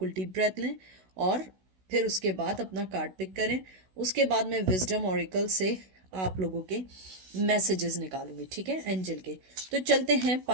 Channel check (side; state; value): left; late; 16 ms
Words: डीप ब्रेथ लें और फिर उसके बाद अपना कार्ड पिक करें। उसके बाद मैं विजडम ऑरिकल से आप लोगों के मैसेजेस निकालूंगी, ठीक है, एंजल के। तो चलते हैं